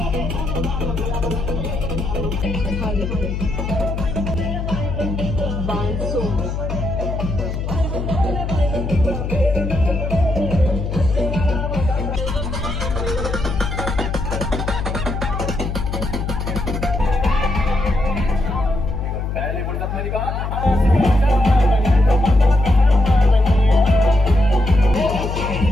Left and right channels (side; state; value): left; noise; hum, 3 dB below the sound